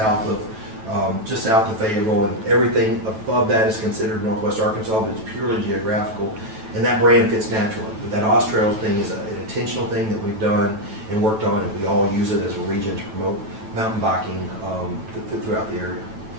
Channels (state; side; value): late; left; 9.2 ms